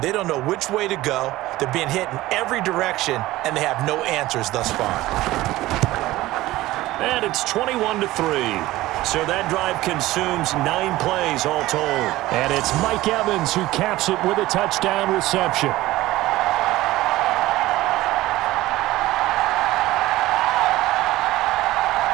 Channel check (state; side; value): quieter; left; 17.2 dB